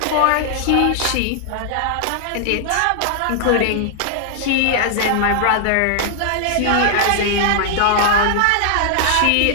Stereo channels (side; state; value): both; different; correlation 0.00